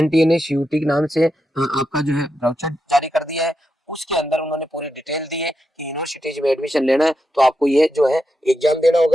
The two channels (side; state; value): both; normal; correlation 0.86